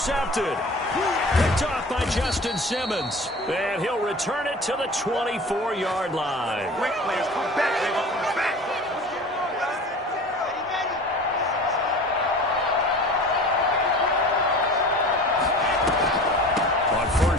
Picked off by Justin Simmons. And he'll return it to the 24-yard line. Great players come back, they come back. On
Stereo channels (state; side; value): normal; both; correlation 0.39